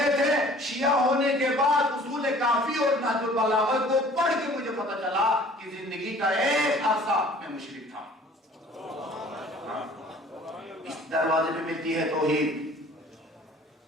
تھے. شیعہ ہونے کے بعد اصول کافی اور نہج البلاغہ کو پڑھ کے مجھے پتا چلا کہ زندگی کا ایک عرصہ میں مشرک تھا. اس دروازے پہ ملتی ہے توحید.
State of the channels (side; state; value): both; normal; correlation 0.51